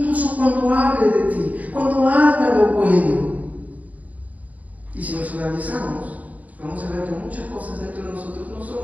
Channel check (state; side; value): late; left; 0.074 ms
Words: cuando hable de ti, cuando haga lo bueno. Y si nos analizamos, vamos a ver que muchas cosas dentro de nosotros no son